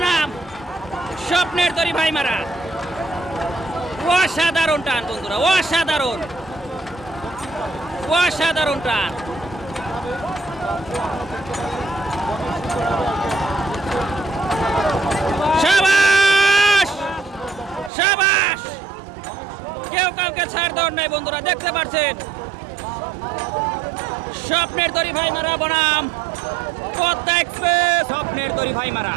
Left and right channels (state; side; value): drops out; left; at 17.9 s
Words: স্বপ্নের তরি ভাইমারা। অসাধারণ টান বন্ধুরা, অসাধারণ অসাধারণ টান। শাবাশ শাবাশ, কেউ কাউকে ছাড় দেওয়ার নাই বন্ধুরা। দেখতে পাচ্ছেন স্বপ্নের তরি ভাইমারা বনাম পদ্মা এক্সপ্রেস। স্বপ্নের তরি ভাইমারা,